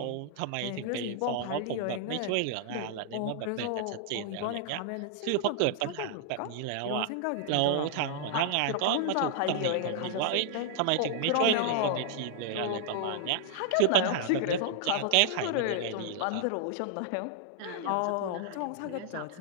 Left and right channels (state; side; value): different; both; correlation -0.01